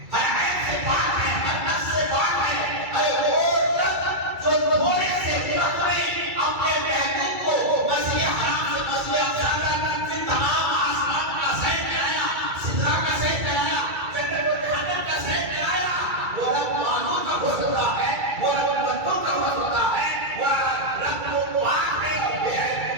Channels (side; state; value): left; late; 2.3 ms